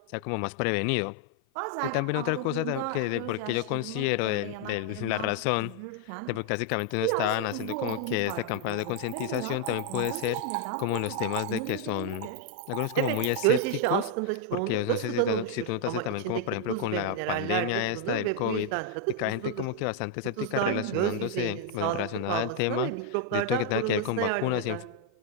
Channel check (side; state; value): both; different; correlation 0.00